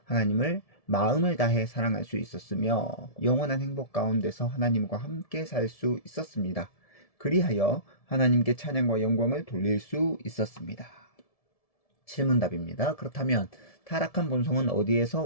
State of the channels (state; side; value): late; right; 1.7 ms